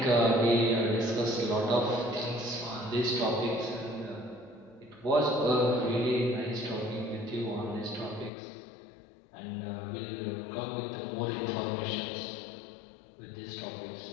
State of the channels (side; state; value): right; drops out; at 8.3 s